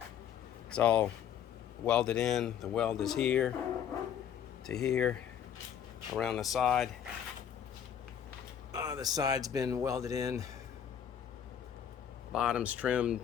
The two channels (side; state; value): right; quieter; 9.0 dB